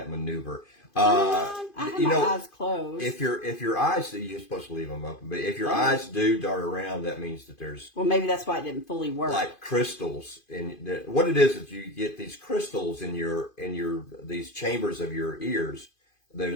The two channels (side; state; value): right; late; 2.5 ms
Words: maneuver? I have my eyes closed. If your eyes, you're supposed to leave them open, but if your eyes do dart around, that means that there's maybe that's why it didn't fully work. Like crystals, what it is you get these crystals in these chambers of your ears,